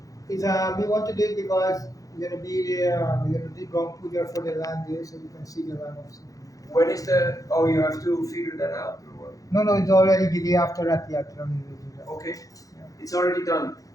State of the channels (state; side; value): late; right; 0.17 ms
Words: It's, we want to do it because we're going to be there, we're going to do Gong Puja for the land there, so you can see the land of Surinam. When is the, oh, you have to figure that out or what? No, it's already the day after Rath Yatra. Okay. It's already done.